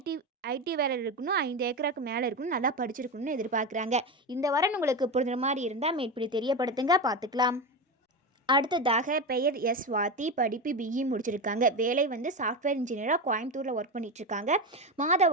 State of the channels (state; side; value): normal; both; correlation 0.18